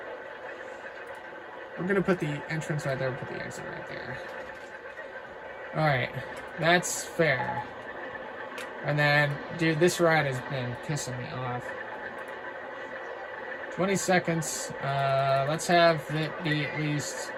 We're gonna put the entrance right there, put the exit right there. Alright, that's fair. And then, dude, this ride has been pissing me off. 20 seconds. Let's have it be at least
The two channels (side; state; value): both; identical; correlation 1.00